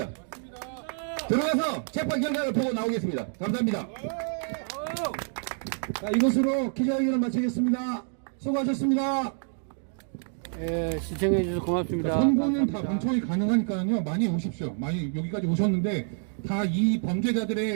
들어가서 재판 결과를 보고 나오겠습니다. 감사합니다. 자, 이것으로 기자회견을 마치겠습니다. 수고하셨습니다. 예, 시청해 주셔서 고맙습니다. 선고는 다 감사합니다. 방청이 가능하니까요. 많이 오십시오. 많이 여기까지 오셨는데 다 이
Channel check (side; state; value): left; silent; 60 dB below the other